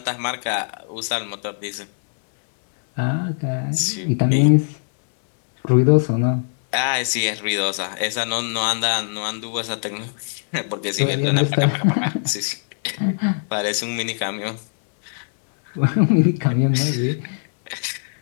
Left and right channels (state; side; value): silent; right; digital silence